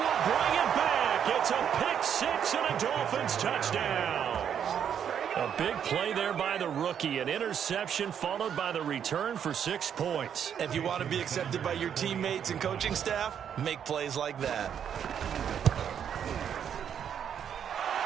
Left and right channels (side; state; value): left; quieter; 8.5 dB